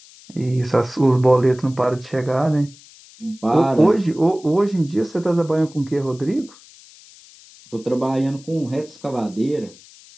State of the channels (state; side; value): noise; left; hiss, 23 dB below the sound